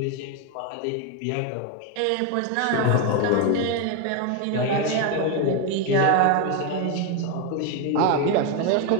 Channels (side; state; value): both; different; correlation 0.01